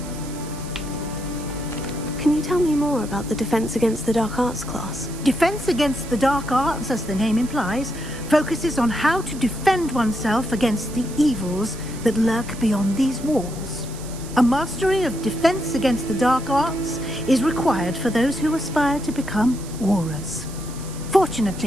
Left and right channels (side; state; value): right; noise; hiss, 16 dB below the sound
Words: Can you tell me more about the Defense Against the Dark Arts class? Defense Against the Dark Arts, as the name implies, focuses on how to defend oneself against the evils that lurk beyond these walls. A mastery of Defense Against the Dark Arts is required for those who aspire to become Aurors.